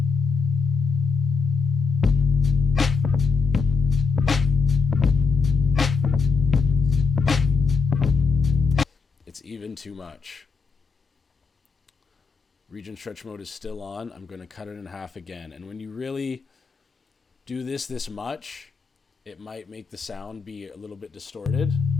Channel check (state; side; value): quieter; right; 4.8 dB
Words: It's even too much. Region stretch mode is still on. I'm going to cut it in half again. And when you really do this much, it might make the sound be a little bit distorted.